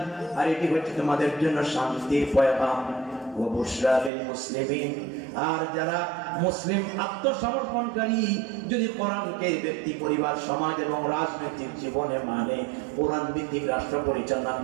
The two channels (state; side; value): drops out; left; at 4.1 s